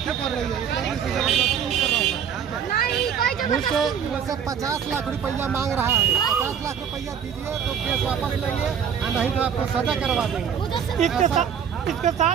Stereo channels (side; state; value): left; quieter; 7.9 dB